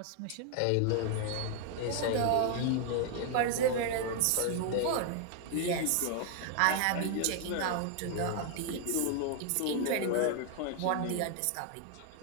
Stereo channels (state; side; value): different; both; correlation 0.00